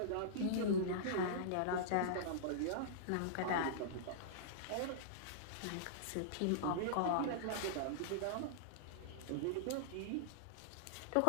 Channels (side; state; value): both; different; correlation -0.02